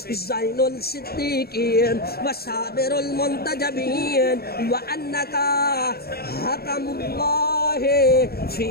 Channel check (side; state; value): right; late; 0.45 ms